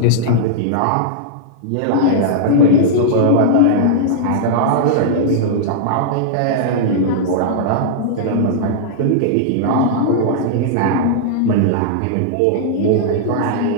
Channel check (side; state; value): both; different; correlation -0.02